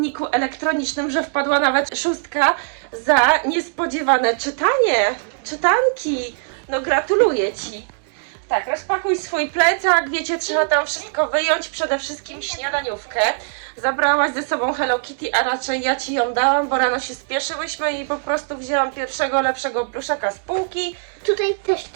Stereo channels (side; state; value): left; silent; digital silence